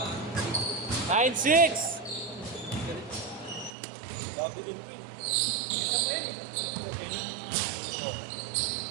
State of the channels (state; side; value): drops out; left; at 3.7 s